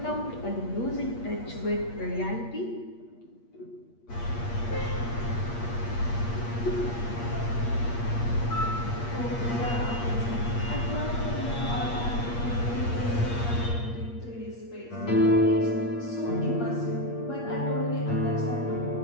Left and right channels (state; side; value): late; right; 8.5 ms